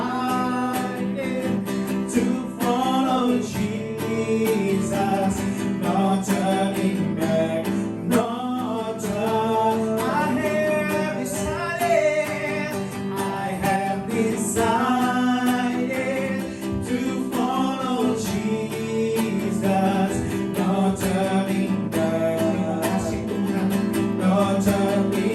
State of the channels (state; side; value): identical; both; correlation 1.00